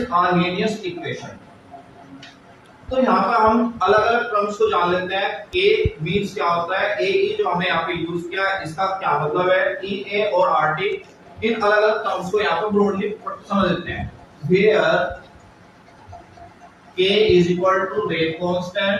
Arrhenius equation. तो यहाँ पर हम अलग अलग टर्म्स को जान लेते हैं. ए मीन्स क्या होता है, ए जो हमने यहाँ पे यूज किया है इसका क्या मतलब है, ई ए और आर टी. इन अलग अलग टर्म्स को यहाँ पर ब्रॉडली समझ लेते हैं. Where K is equal to rate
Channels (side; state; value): both; identical; correlation 1.00